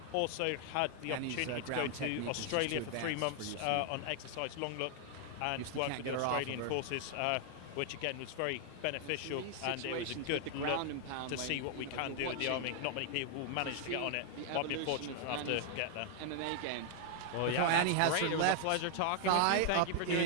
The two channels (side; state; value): both; different; correlation 0.00